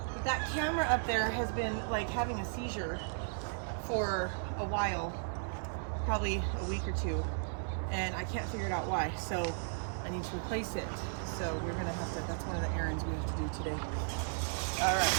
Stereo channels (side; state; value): left; silent; 54 dB below the other